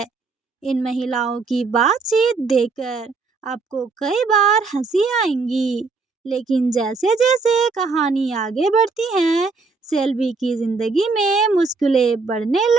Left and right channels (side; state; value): left; quieter; 4.2 dB